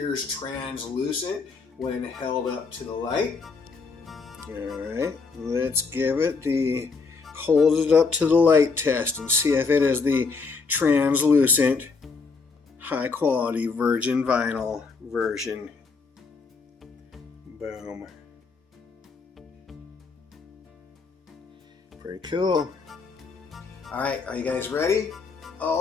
translucent when held up to the light. Alright, let's give it the hold it up to the light test and see if it is the translucent high quality virgin vinyl version. Boom. Pretty cool. Alright, are you guys ready?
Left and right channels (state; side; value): quieter; right; 4.6 dB